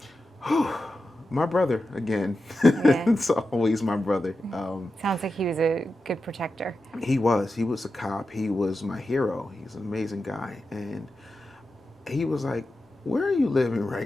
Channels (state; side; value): normal; both; correlation 0.91